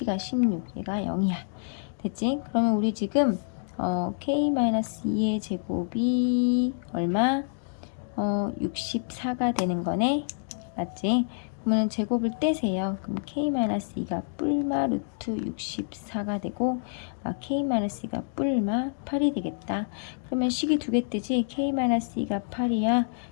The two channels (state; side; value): silent; right; digital silence